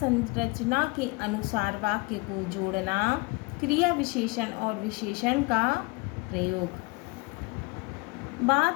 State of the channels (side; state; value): right; quieter; 25.8 dB